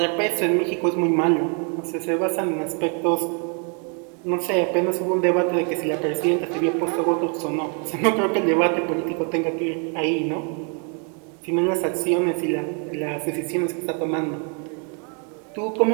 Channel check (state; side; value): quieter; left; 39.3 dB